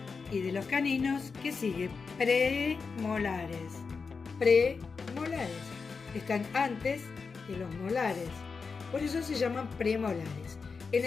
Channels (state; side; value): quieter; right; 5.0 dB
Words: y de los caninos, ¿qué sigue? Premolares. Premolares. Están antes de los molares. Por eso se llaman premolares. En